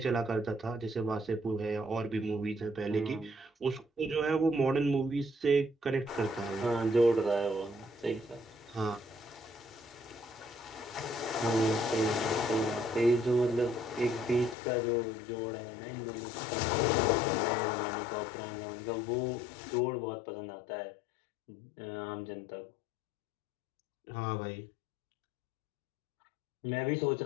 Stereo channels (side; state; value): right; drops out; at 14.6 s